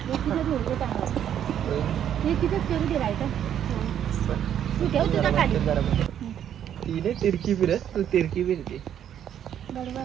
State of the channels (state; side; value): quieter; left; 9.9 dB